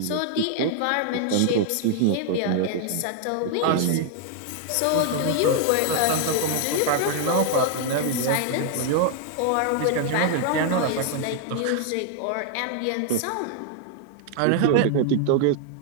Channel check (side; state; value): both; different; correlation 0.00